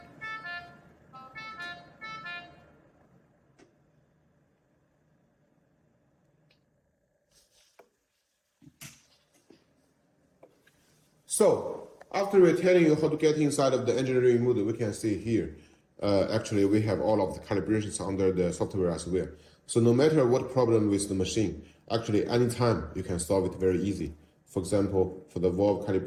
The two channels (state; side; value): identical; both; correlation 1.00